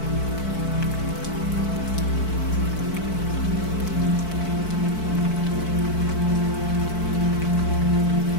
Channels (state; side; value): late; right; 4.6 ms